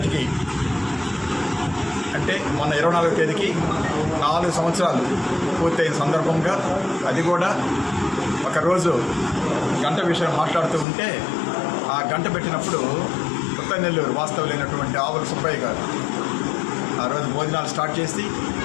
అంటే మొన్న 24వ తేదీకి 4 సంవత్సరాలు పూర్తయిన సందర్భంగా అది కూడా ఒకరోజు గంట విషయం మాట్లాడుతూ ఉంటే ఆ గంట పెట్టినప్పుడు కొత్తనెల్లూరు వాస్తవులైనటువంటి ఆవుల సుబ్బయ్య గారు ఆ రోజు భోజనాలు స్టార్ట్ చేసి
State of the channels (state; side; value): drops out; right; at 10.9 s